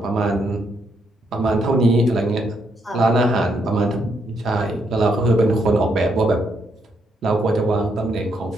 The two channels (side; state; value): both; normal; correlation 0.76